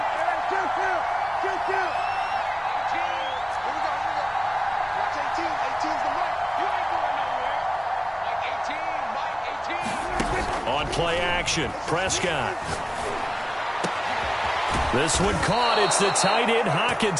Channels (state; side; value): identical; both; correlation 1.00